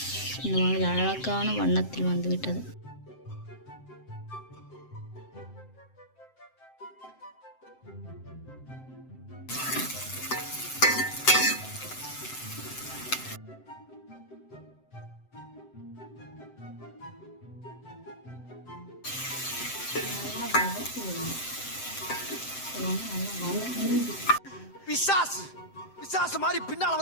இந்த மாதிரி அழகான வண்ணத்தில் வந்து விட்டது. பிசாசு மாதிரி பின்னால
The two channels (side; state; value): right; late; 7.7 ms